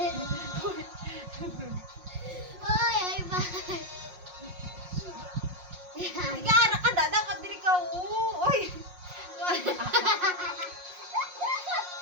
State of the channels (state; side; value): late; left; 5.5 ms